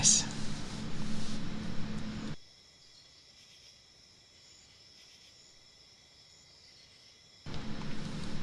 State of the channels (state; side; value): identical; both; correlation 1.00